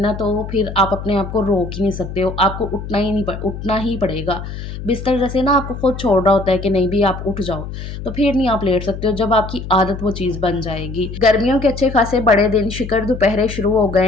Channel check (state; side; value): noise; left; hum, 9 dB below the sound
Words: तो फिर आप अपने आप को रोक ही नहीं सकते हो। आपको उठना ही पड़ेगा। बिस्तर जैसे ना आपको खुद छोड़ रहा होता है कि नहीं भी आप उठ जाओ, तो फिर नहीं आप लेट सकते हो जब आपकी आदत वो चीज़ बन जाएगी। गर्मियों के अच्छे खासे बड़े दिन शिकर दोपहरे शुरू हो गए